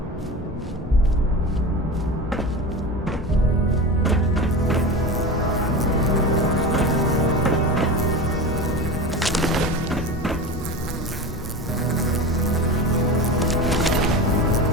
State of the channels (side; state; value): both; normal; correlation 0.28